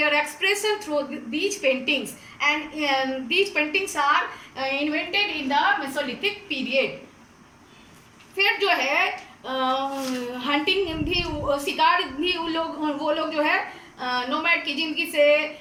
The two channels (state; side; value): identical; both; correlation 1.00